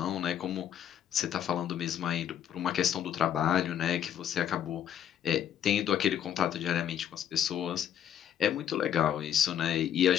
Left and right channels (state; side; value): quieter; right; 9.8 dB